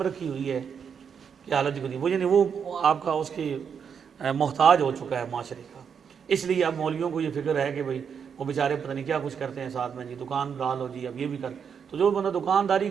رکھی ہوئی ہے کہ حالت کو نہیں، وہ یعنی وہ آپ کا اس کے محتاج ہو چکا ہے معاشرے کا۔ اس لیے اب مولویوں کو یہ فکر ہے کہ بھئی وہ بیچارے پتہ نہیں کیا کچھ کرتے ہیں ساتھ میں، جی دکان ڈالو جی اب یہ بھی کر، تو جو بندہ دکانداری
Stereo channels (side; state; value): left; quieter; 7.0 dB